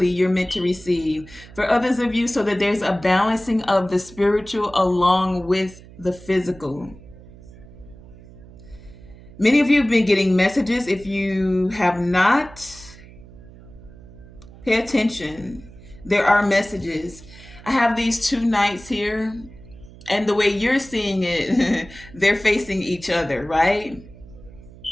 you're meant to receive. For others of you, so that there's a balancing of the spiritual along with the physical. Many of you have been getting messages. If you have not, pay attention. There are messages. I have these two knights here, and the way you're seeing it, they're facing each other, right?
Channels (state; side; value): noise; right; hum, 20 dB below the sound